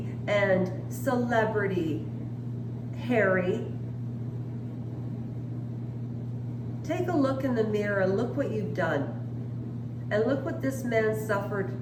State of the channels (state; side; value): identical; both; correlation 1.00